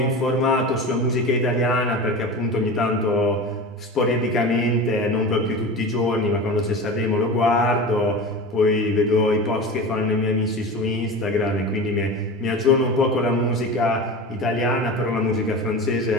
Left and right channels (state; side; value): normal; both; correlation 0.30